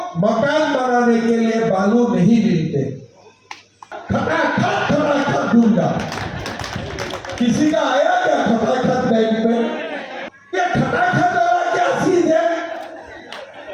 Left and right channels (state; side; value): identical; both; correlation 1.00